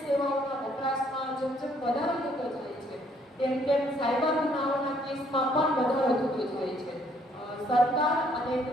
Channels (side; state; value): both; normal; correlation 0.65